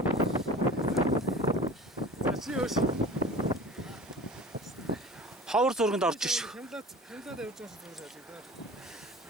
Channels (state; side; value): normal; both; correlation 0.39